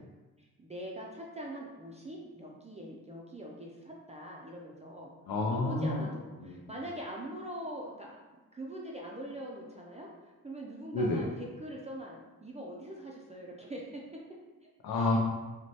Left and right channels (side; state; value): both; normal; correlation 0.44